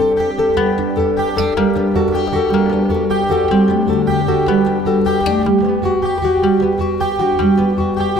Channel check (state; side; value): normal; both; correlation 0.65